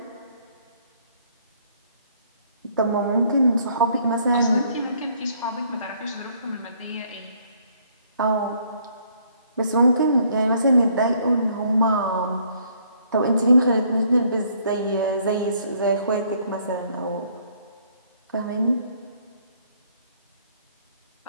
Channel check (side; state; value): both; inverted; correlation -0.64